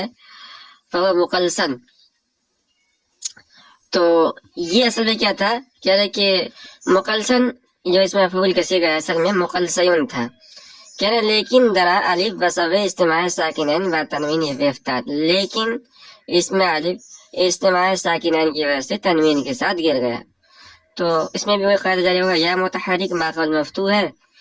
فهو مقلسن تو یہ اصل میں کیا تھا. کہہ رہے کہ مقلسن جو اس میں مفعول کا صیغہ ہے اصل میں مقلسیون تھا. کہہ رہے لیکن درا الف بسبب اجتماع ساکنین و تنوین افتاد. لیکن اس میں الف اجتماع ساکنین کی وجہ سے تنوین کے ساتھ گر گیا. تو اس میں بھی وہی قاعدہ جاری ہوگا یا متحرک ماقبل مفتوح ہے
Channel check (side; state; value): both; identical; correlation 1.00